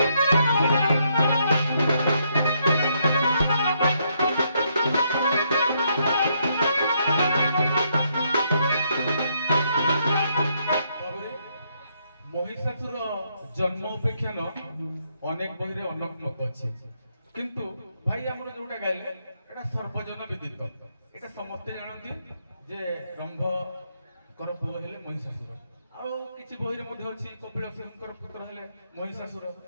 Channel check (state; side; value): inverted; both; correlation -0.75